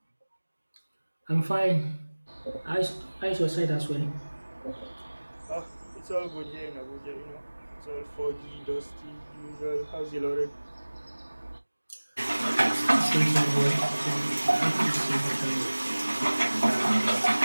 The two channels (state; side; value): inverted; both; correlation -1.00